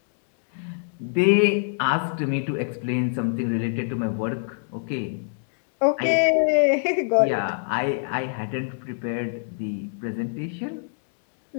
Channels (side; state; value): right; silent; digital silence